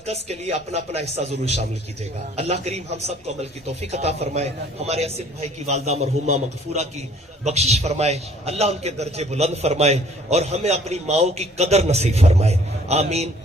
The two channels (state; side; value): normal; both; correlation 0.56